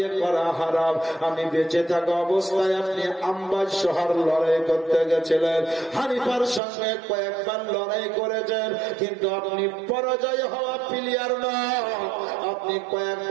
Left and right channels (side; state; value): left; drops out; at 6.6 s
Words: করা হারাম। আমি বেঁচে থাকা অবস্থায় আপনি আম্বাজ শহর লড়াই করতে গেছিলেন, হানিফার সঙ্গে কয়েকবার লড়াই করেছেন, কিন্তু আপনি পরাজয় হওয়া প্লেয়ার নয়, আপনি